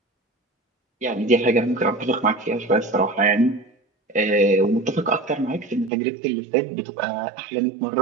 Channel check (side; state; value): left; drops out; at 5.9 s